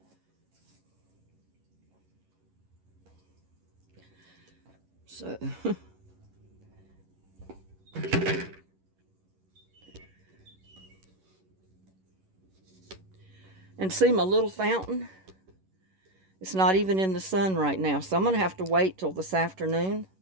So... And see my little fountain? It's not even in the sun right now. So I'm going to have to wait till this afternoon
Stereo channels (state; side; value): late; left; 11 ms